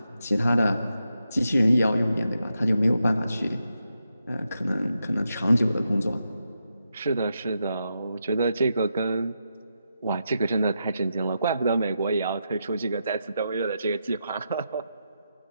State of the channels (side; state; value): both; inverted; correlation -0.85